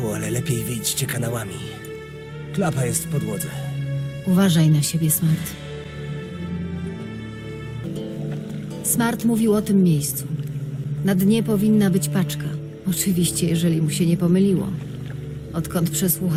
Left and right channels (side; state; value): both; identical; correlation 1.00